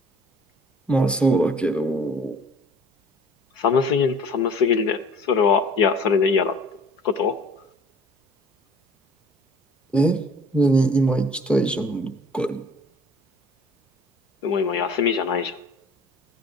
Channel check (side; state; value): both; normal; correlation 0.50